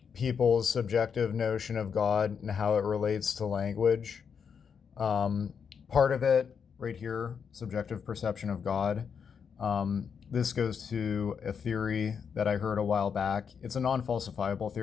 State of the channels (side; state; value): right; quieter; 6.7 dB